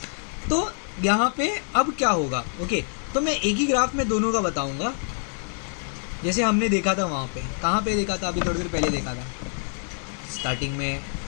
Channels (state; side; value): silent; right; 57 dB below the other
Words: तो यहाँ पे अब क्या होगा. ओके, तो मैं एक ही ग्राफ में दोनों का बताऊंगा, जैसे हमने देखा था वहाँ पे. कहाँ पे देखा था, अभी थोड़ी देर पहले देखा था. स्टार्टिंग में